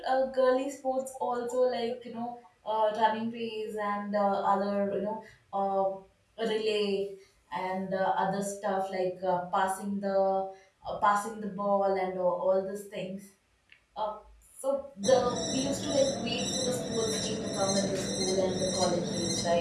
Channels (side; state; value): both; identical; correlation 1.00